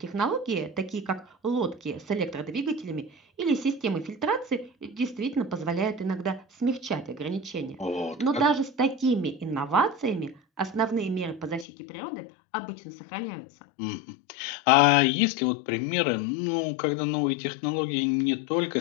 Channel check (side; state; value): right; drops out; at 11.7 s